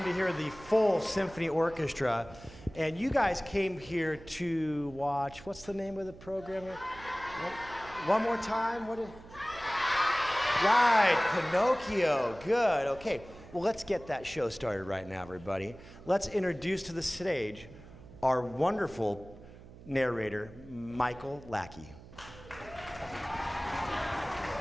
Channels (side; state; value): right; noise; hum, 18 dB below the sound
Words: to hear the full symphony orchestra. And you guys came here to watch, what's the name of the program? One more time? Right, Pinocchio. Good, okay. Well, let's get that show started right now, everybody. Let's introduce to the stage our wonderful narrator, Michael Lackey.